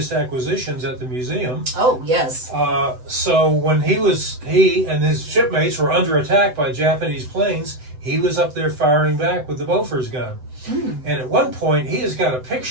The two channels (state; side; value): late; left; 7.9 ms